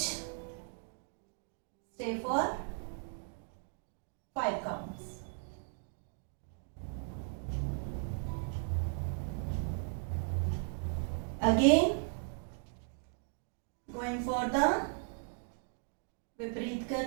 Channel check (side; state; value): left; silent; 53 dB below the other